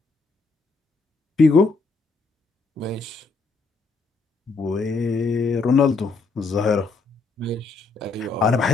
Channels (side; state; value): right; quieter; 4.0 dB